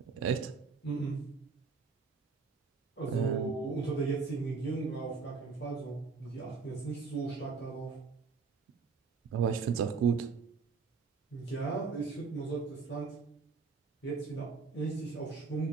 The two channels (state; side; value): quieter; left; 4.9 dB